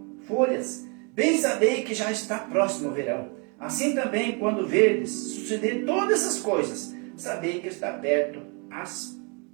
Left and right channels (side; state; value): left; quieter; 33.6 dB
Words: folhas, bem sabei que já está próximo o verão. Assim também, quando verdes suceder todas essas coisas, sabei que está perto as